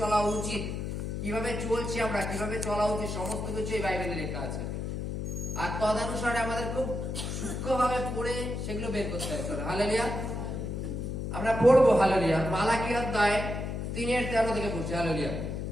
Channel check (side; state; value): left; noise; hum, 4 dB below the sound